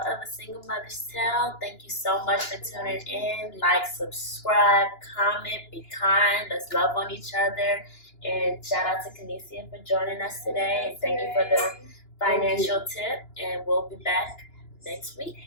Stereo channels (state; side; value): late; right; 2.9 ms